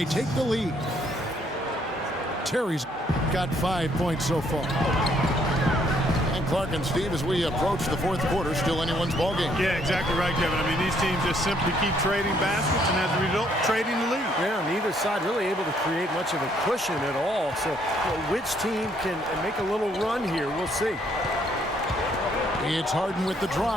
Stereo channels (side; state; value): both; normal; correlation 0.68